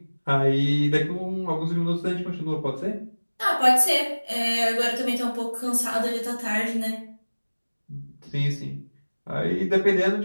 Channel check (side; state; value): both; inverted; correlation -1.00